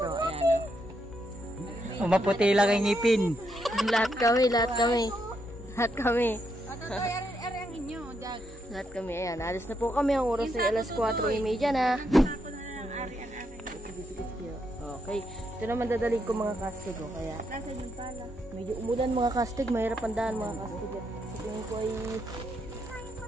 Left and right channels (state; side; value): normal; both; correlation 0.79